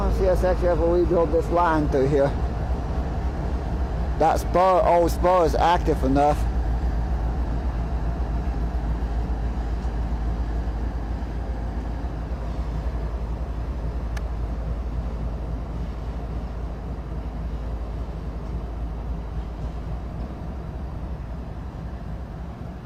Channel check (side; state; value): both; identical; correlation 1.00